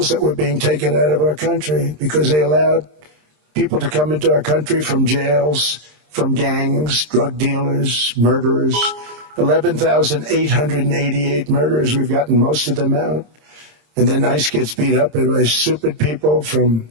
that were being taken out of our country because they allowed people to come into our country from jails, from gangs, drug dealers, murderers. 11,888 murderers. We've gotten most of them out. And then ICE gets beat up by stupid people from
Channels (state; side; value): late; left; 26 ms